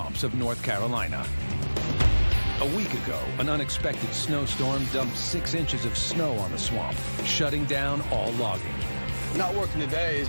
of North Carolina. A week ago, an unexpected snowstorm dumped 6 inches of snow on the swamp, shutting down all logging. Not working today is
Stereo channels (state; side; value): inverted; both; correlation -1.00